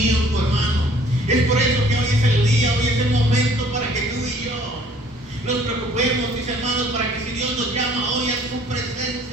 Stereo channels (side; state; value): both; normal; correlation 0.56